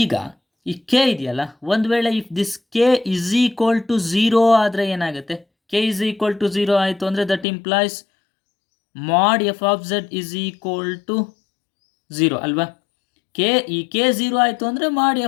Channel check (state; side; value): drops out; right; at 7.5 s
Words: ಈಗ ಈ ಕೆ ಇದೆಯಲ್ಲ, ಒಂದು ವೇಳೆ ಇಫ್ ದಿಸ್ ಕೆ ಈಸ್ ಈಕ್ವಲ್ ಟು 0 ಆದರೆ ಏನಾಗುತ್ತೆ, ಕೆ ಈಸ್ ಈಕ್ವಲ್ ಟು 0 ಆಯಿತು ಅಂದರೆ ದಟ್ ಇಂಪ್ಲಾಯ್ಸ್ ಮಾಡ್ ಎಫ್ ಆಫ್ ಝೆಡ್ ಈಸ್ ಈಕ್ವಲ್ ಟು 0 ಅಲ್ವಾ. ಈ ಕೆ 0 ಆಯಿತು ಅಂದರೆ ಮಾಡ್